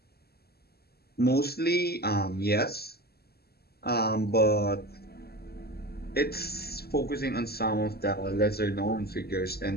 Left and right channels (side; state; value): right; late; 0.46 ms